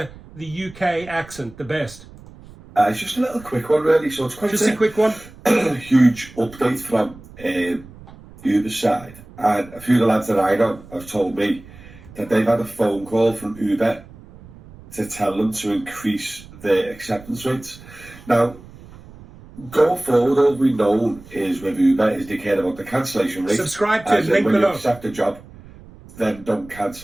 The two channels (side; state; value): right; noise; rumble, 20 dB below the sound